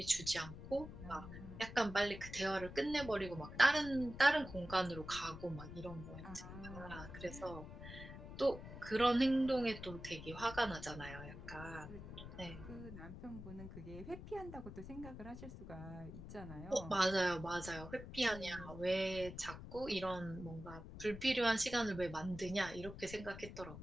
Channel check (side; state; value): left; noise; rumble, 11 dB below the sound